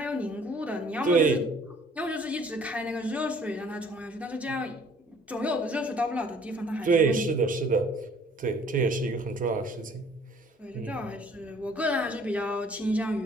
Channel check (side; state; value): both; normal; correlation 0.56